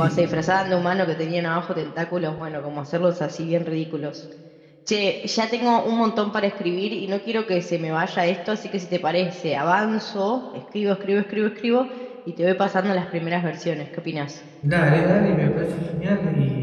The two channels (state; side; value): identical; both; correlation 1.00